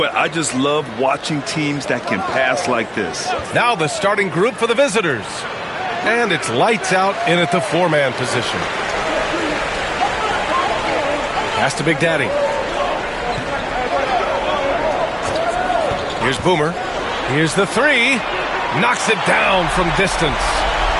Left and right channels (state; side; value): identical; both; correlation 1.00